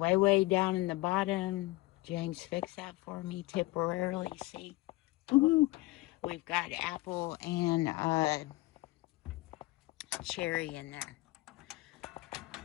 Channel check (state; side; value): quieter; right; 20.3 dB